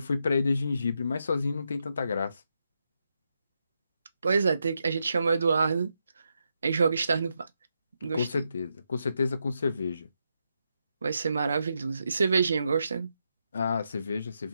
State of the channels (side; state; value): both; inverted; correlation -0.83